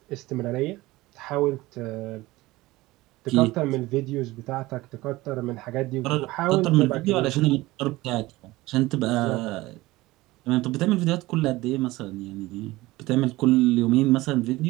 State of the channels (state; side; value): quieter; left; 19.2 dB